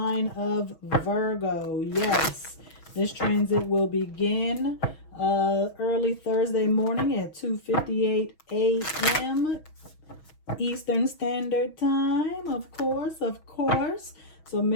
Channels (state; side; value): late; right; 6.3 ms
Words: of Virgo. Yes, this transit will begin early Thursday morning at 2:58 a.m. Eastern Standard Time, of course. So